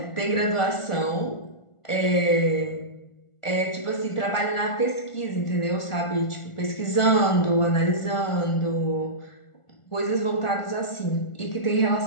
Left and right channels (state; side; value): late; right; 1.4 ms